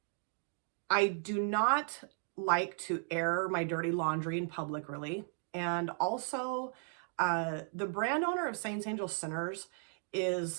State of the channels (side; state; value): left; silent; 54 dB below the other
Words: I do not like to air my dirty laundry in public, really. And also, the brand owner of Saints Angel Sinners